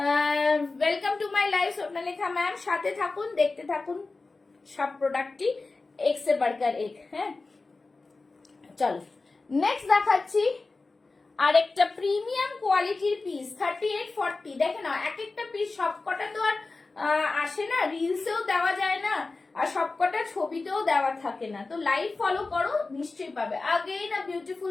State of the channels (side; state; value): right; quieter; 3.6 dB